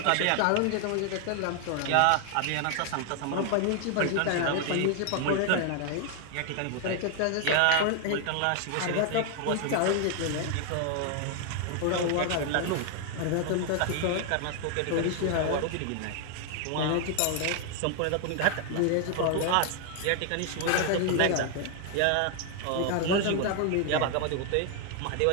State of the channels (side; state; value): both; different; correlation 0.00